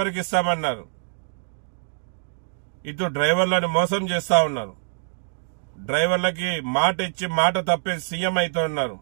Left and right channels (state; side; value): silent; left; digital silence